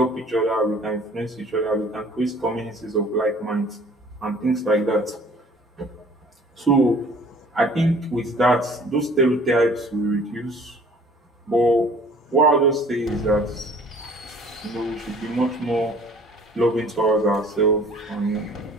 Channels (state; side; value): normal; both; correlation 0.51